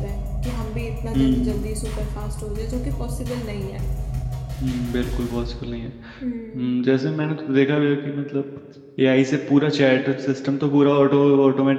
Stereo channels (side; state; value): both; identical; correlation 1.00